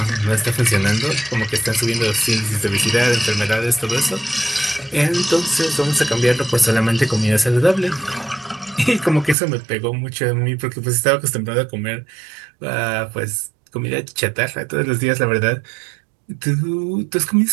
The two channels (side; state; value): left; drops out; at 9.3 s